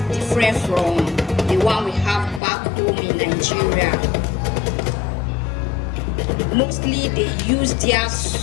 different from the one we have back home in Nigeria. Mostly they use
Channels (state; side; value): drops out; right; at 2.4 s